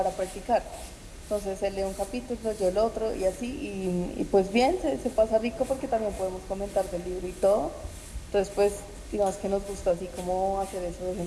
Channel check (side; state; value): both; identical; correlation 1.00